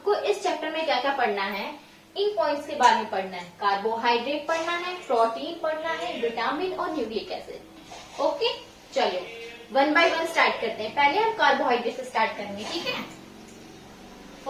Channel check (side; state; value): both; identical; correlation 1.00